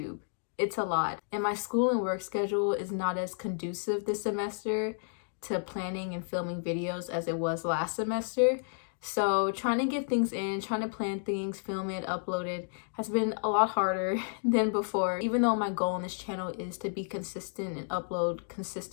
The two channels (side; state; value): right; silent; digital silence